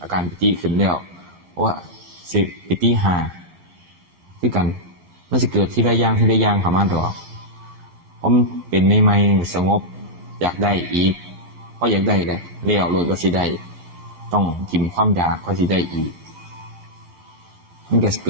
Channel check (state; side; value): late; left; 11 ms